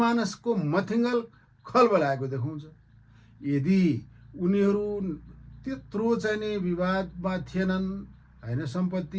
मथिङ्गल खलबलाएको देखाउँछ। यदि उनीहरू त्यत्रो चाहिँ नि विवादमा थिएनन् होइन,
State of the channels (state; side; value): identical; both; correlation 1.00